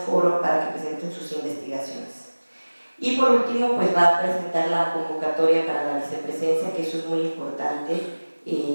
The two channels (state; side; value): inverted; both; correlation -1.00